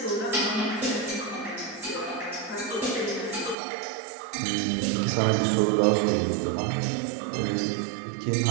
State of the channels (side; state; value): left; drops out; at 3.6 s